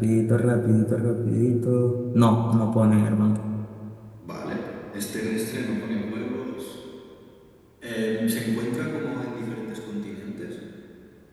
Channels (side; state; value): both; identical; correlation 1.00